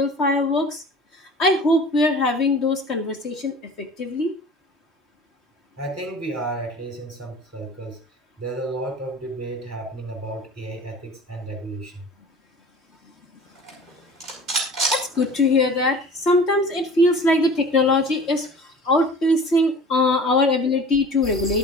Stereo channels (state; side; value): normal; both; correlation 0.42